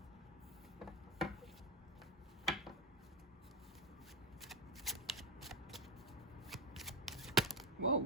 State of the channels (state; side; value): normal; both; correlation 0.08